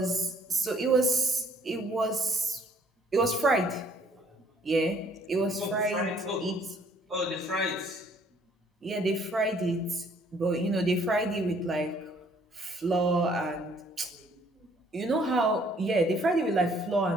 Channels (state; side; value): normal; both; correlation 0.62